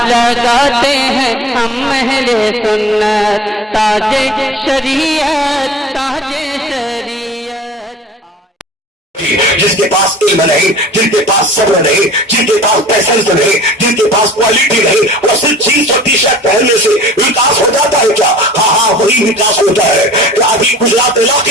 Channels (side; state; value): both; normal; correlation 0.45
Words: लगाते हैं हम अहले सुन्नत, ताजे शरीयत, ताजे शरीयत। जिसके पास इल्म नहीं, जिनके पास सब्र नहीं, जिनके पास पैसेंस नहीं, जिनके पास क्वालिटी नहीं, वो सिर्फ जीन्स और टी शर्ट पहनने से विकास हो जाता है क्या? हाँ, वही विकास होता है कि अभी गुजरात